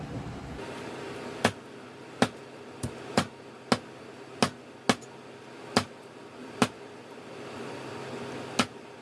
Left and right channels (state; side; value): identical; both; correlation 1.00